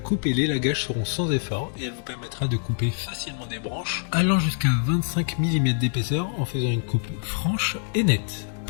et l'élagage seront sans effort et elle vous permettra de couper facilement des branches allant jusqu'à 25 mm d'épaisseur en faisant une coupe franche et nette.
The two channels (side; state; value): right; silent; 61 dB below the other